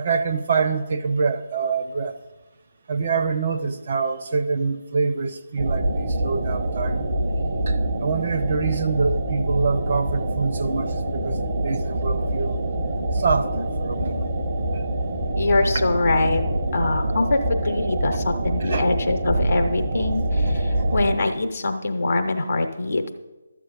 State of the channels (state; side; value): inverted; both; correlation -0.84